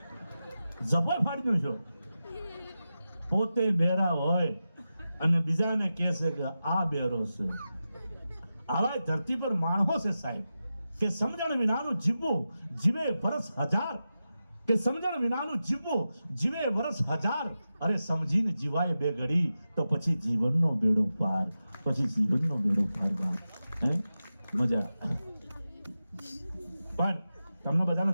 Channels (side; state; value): both; inverted; correlation -0.92